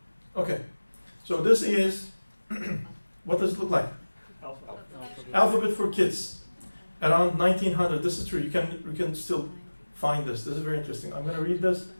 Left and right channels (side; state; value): both; inverted; correlation -1.00